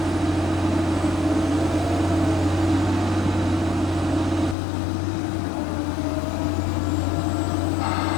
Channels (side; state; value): right; drops out; at 4.5 s